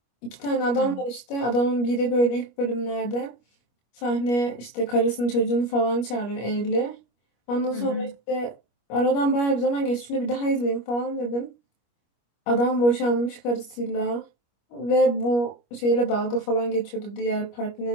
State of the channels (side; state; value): right; late; 25 ms